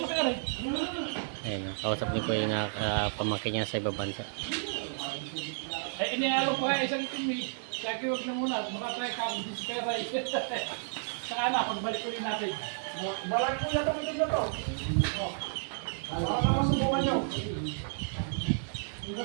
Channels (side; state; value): left; silent; digital silence